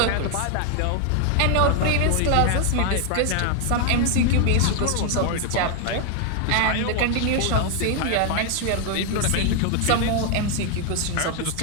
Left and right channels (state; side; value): different; both; correlation 0.00